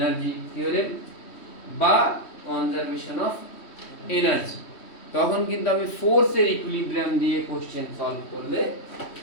থিওরেম বা কনজারভেশন অফ এনার্জি। তখন কিন্তু আমি ফোর্সের ইকুইলিব্রিয়াম দিয়ে কোশ্চেন সলভ করলে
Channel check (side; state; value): right; late; 3.1 ms